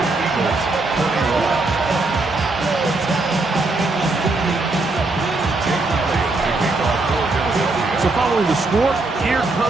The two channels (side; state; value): left; quieter; 3.2 dB